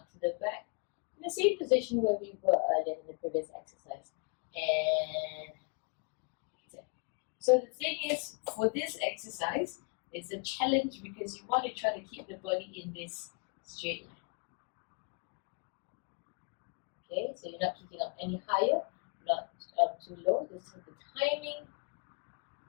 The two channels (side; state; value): right; quieter; 35.2 dB